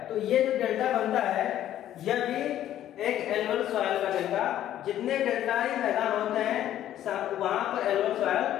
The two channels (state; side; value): quieter; right; 12.0 dB